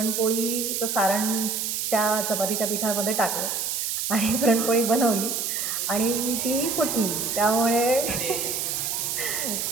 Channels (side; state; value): right; noise; hiss, 1 dB below the sound